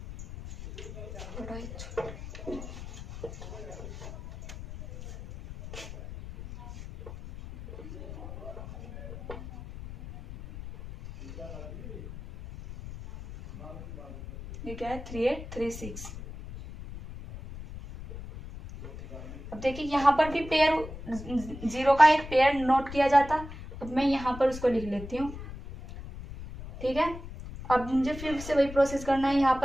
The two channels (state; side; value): noise; left; rumble, 12 dB below the sound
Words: ये क्या है 3 8 3 6। अब देखिए यहाँ पर भी पेयर 0 का एक पेयर नोट किया जाता, अब मैं यहाँ पर उसको लिख लेती हूँ, ठीक है। अब मुझे फिर से वही प्रोसेस करना है, यहाँ